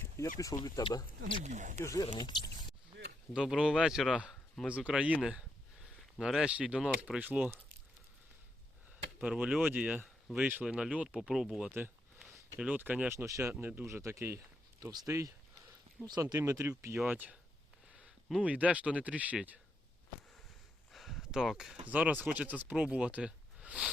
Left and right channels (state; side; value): normal; both; correlation 0.80